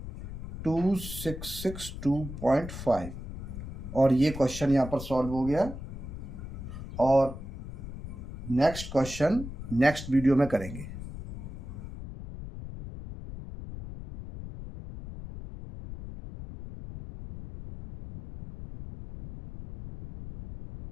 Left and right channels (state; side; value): noise; left; rumble, 10 dB below the sound